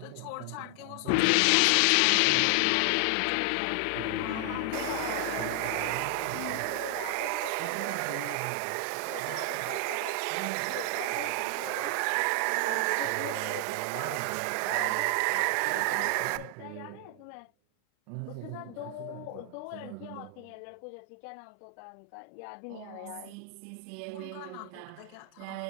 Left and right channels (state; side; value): different; both; correlation 0.00